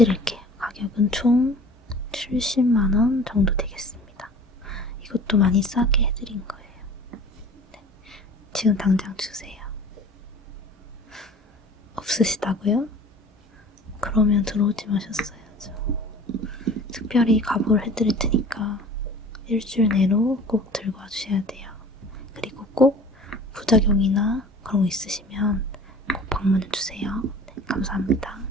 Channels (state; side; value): normal; both; correlation 0.44